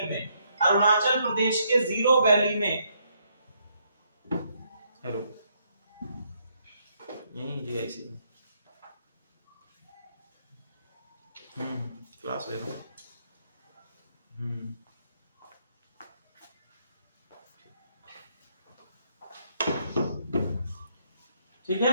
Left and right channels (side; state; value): both; inverted; correlation -0.73